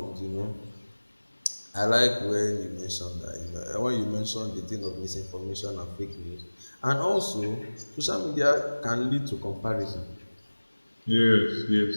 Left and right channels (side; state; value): both; inverted; correlation -1.00